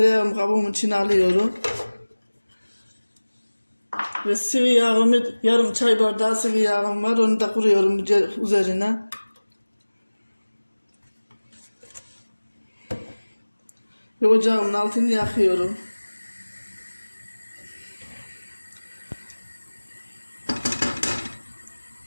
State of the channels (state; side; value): inverted; both; correlation -1.00